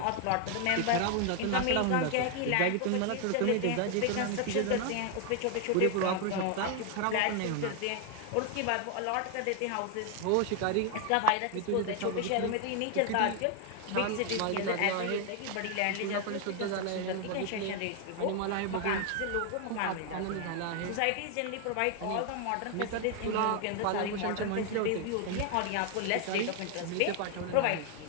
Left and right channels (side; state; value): both; different; correlation 0.00